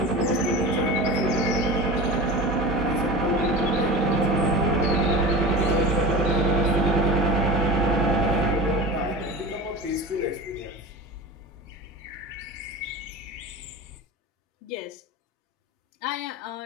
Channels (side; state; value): both; normal; correlation 0.32